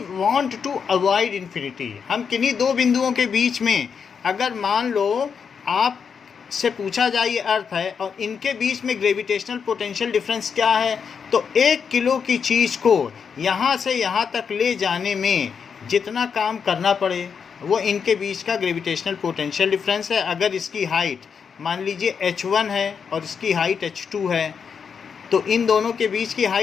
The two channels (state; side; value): quieter; right; 6.5 dB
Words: to avoid infinity. हम किन्हीं दो बिंदुओं के बीच में, अगर मान लो आप से पूछा जाए ये अर्थ है और इनके बीच में ग्रेविटेशनल पोटेंशियल डिफरेंस क्या है, तो 1 किलो की चीज़ को यहाँ से यहाँ तक ले जाने में जितना काम करना पड़े वो इनके बीच का ग्रेविटेशनल पोटेंशियल डिफरेंस है। अगर इसकी हाइट मान लीजिए h1 है और इसकी हाइट h2 है, तो इन दोनों के बीच की